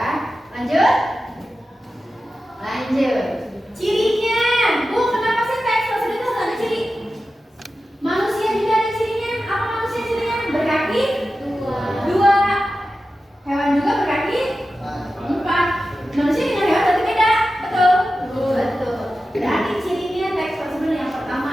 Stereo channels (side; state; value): both; normal; correlation 0.93